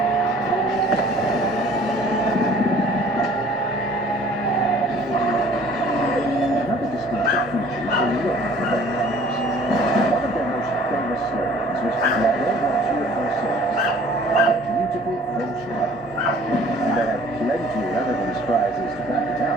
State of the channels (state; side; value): normal; both; correlation 0.52